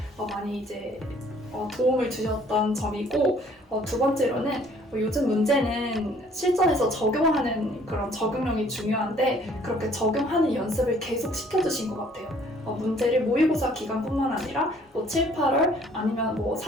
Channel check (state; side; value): normal; both; correlation 0.58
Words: 많이 이제 도움을 주셨던 점이고, 두 번째로는 요즘 문제는 실전에서 적용하는 그런 적용력이 중요한데 그렇게 적용하는 연습을 계속 시켜주신 것 같아요. 문제를 모의고사 기간뿐만 아니라 7, 8월 아니면